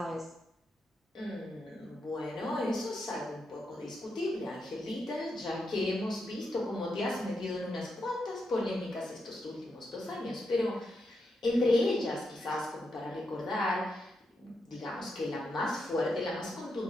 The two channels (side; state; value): both; normal; correlation 0.84